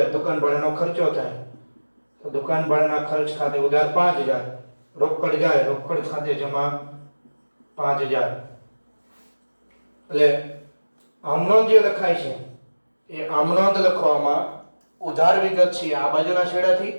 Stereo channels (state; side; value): inverted; both; correlation -1.00